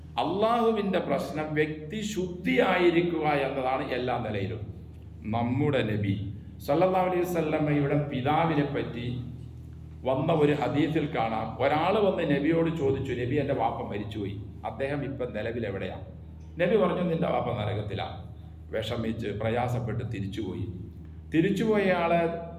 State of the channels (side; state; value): both; identical; correlation 1.00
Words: അള്ളാഹുവിൻ്റെ പ്രശ്നം വ്യക്തി ശുദ്ധിയായിരിക്കുക എന്നതാണ് എല്ലാ നിലയിലും. നമ്മുടെ നബി സല്ലല്ലാഹു അലൈഹി വസല്ലമയുടെ പിതാവിനെ പറ്റി വന്ന ഒരു ഹദീസിൽ കാണാം. ഒരാൾ വന്ന് നബിയോട് ചോദിച്ചു, നബി എൻ്റെ വാപ്പ മരിച്ചുപോയി, അദ്ദേഹം ഇപ്പം നിലവിൽ എവിടെയാണ്? നബി പറഞ്ഞു, നിന്റെ വാപ്പ നരകത്തിലാണ്. വിഷമിച്ച് പ്രയാസപ്പെട്ട് തിരിച്ചുപോയ ആളെ